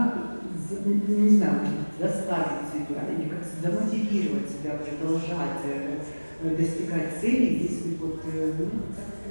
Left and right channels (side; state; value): both; inverted; correlation -1.00